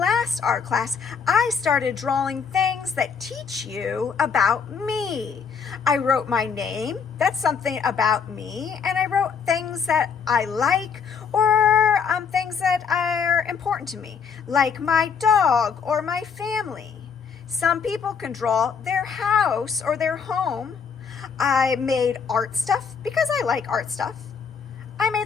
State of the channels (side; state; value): right; quieter; 6.2 dB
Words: art class, I started drawing things that teach you about me. I wrote my name, that's something about me, and I wrote things that I like or things that are important to me, like my dog or my family. Some people can draw their house or their home. I made art stuff because I like art stuff. I